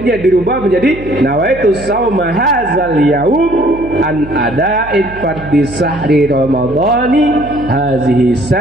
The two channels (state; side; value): noise; right; hum, 16 dB below the sound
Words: dirubah menjadi nawaitu sauma hadzal yaum an ada'id fardhi sahri ramadhani hazihi